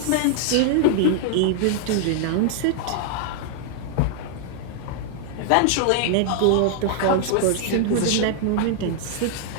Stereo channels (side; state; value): both; different; correlation 0.00